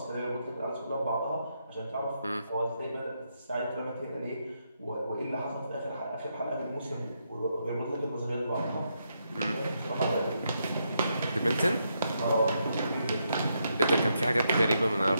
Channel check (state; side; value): inverted; both; correlation -0.80